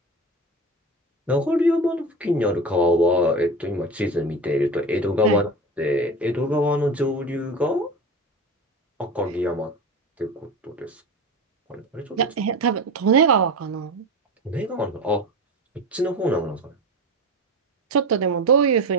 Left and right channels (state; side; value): normal; both; correlation 0.28